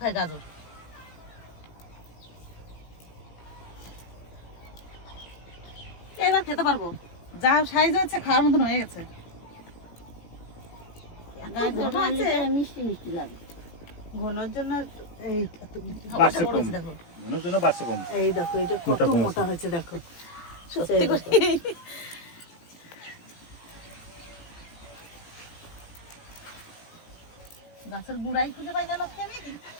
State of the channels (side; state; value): right; late; 18 ms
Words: গাজর। এবার খেতে পারবো, যা সাইজ হচ্ছে খাওয়ার মতন হয়ে গেছে। গাজর রান্না করে মিষ্টি মিষ্টি লাগে। ঘনর জন্য এই বাড়ছে কম, মনের জন্য বাড়ছে কম। এই দেখো এটা কত মোটা কম মোটা আছে। হয়েছে দেখো, সত্যি করে। গাছের গুড়াই খুঁজে পাই না লক্ষ্মী আমি।